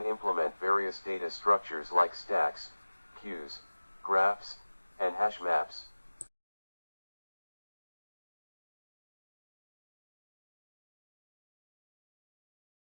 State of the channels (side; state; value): both; inverted; correlation -1.00